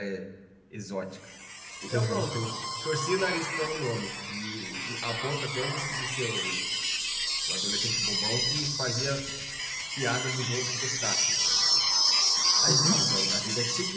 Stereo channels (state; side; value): identical; both; correlation 1.00